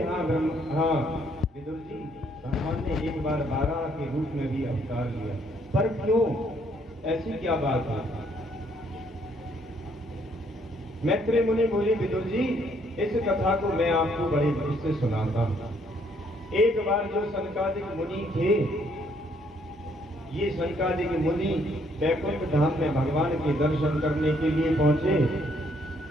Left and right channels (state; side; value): normal; both; correlation 0.68